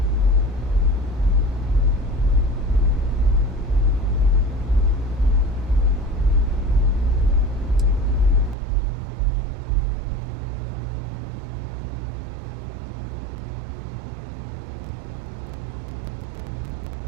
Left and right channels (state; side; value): drops out; left; at 8.6 s